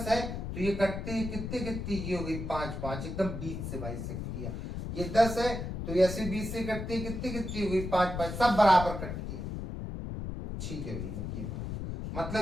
है, तो ये कटते हैं कितने कितने, ये हो गई 5 5, एकदम बीच से भाई सकती है। ये 10 है तो ऐसे बीच से कटती है, कितनी कितनी हो गई 5 5, सब बराबर कटती है। ठीक है भैया, ये बात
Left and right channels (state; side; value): noise; left; rumble, 5 dB below the sound